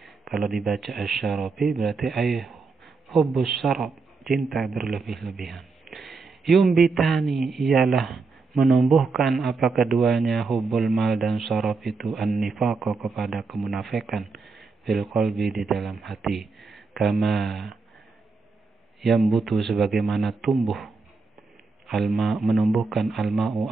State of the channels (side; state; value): left; quieter; 4.3 dB